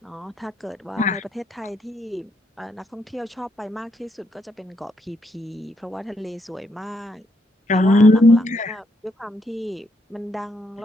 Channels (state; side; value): normal; both; correlation 0.76